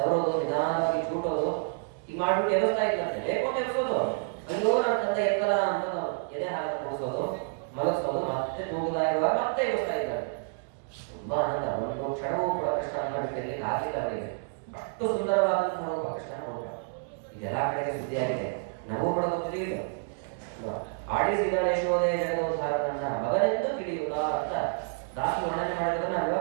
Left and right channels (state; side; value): silent; left; digital silence